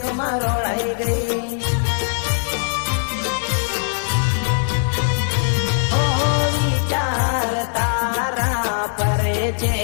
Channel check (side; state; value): right; silent; digital silence